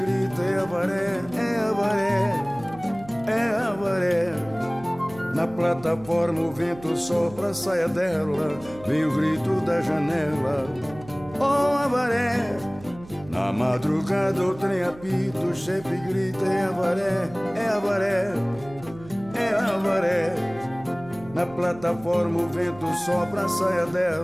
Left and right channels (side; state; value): right; noise; hum, 19 dB below the sound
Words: é avaré, é avaré, é avaré. Na plataforma o vento sopra a saia dela, vem o grito da janela, oh avaré. Na madrugada o trem apita, o chefe grita, é avaré, é avaré, é avaré. Na plataforma o vento sopra a saia